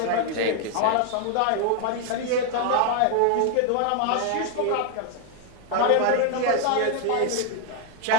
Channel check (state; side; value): different; both; correlation 0.00